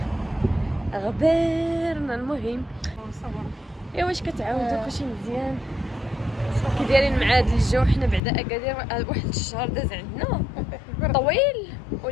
غبرنا المهم. واش كتعاودوا كلشي مزيان؟ كي دايرين مع هذا الجو؟ حنا بعدا اكادير واحد الشهر داز عندنا طويل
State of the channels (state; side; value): drops out; right; at 8.2 s